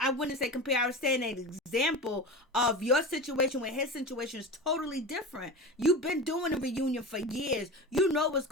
wouldn't say compare, I was saying an example of your situation when his situation is totally different. You've been doing a reunion for years. You know what's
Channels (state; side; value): normal; both; correlation 0.28